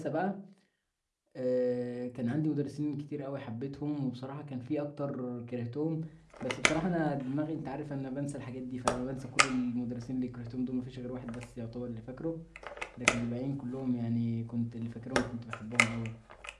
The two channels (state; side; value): identical; both; correlation 1.00